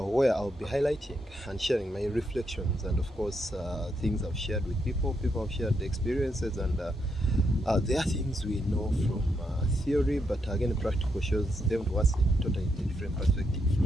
I'll be highlighting and sharing my reflections and, of course, things I've shared with people. People have shared the experiences, and there are things we know from theory, but again, practical shows them to us in totally different perspective.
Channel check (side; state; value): both; normal; correlation 0.79